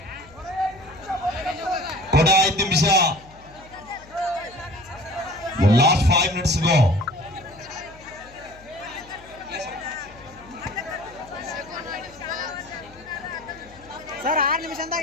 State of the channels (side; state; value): left; noise; hum, 23 dB below the sound